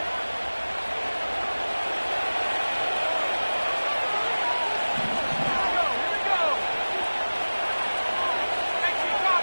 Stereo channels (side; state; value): both; inverted; correlation -1.00